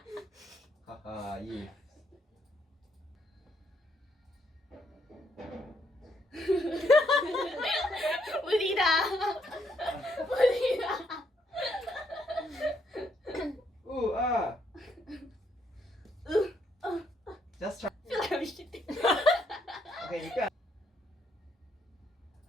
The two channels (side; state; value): both; normal; correlation 0.74